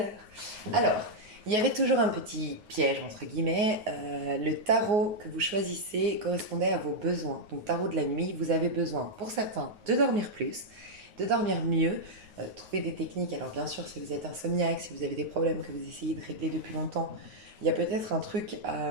Alors, il y avait toujours un petit piège, entre guillemets. Le tarot que vous choisissez correspondait à vos besoins. Donc, tarot de la nuit, vous avez besoin, pour certains, de dormir plus, de dormir mieux, trouver des techniques. Alors, bien sûr, si vous êtes insomniaque, si vous avez des problèmes que vous essayez de régler depuis longtemps, il y a peut-être un truc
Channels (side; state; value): left; late; 9.4 ms